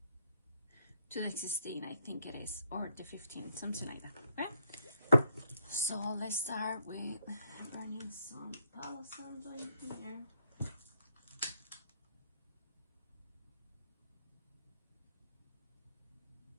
to the 16th, I think it is, or the 15th, something like that. Okay, so let's start with burning some Palo Santo in here.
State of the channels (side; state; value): both; inverted; correlation -0.73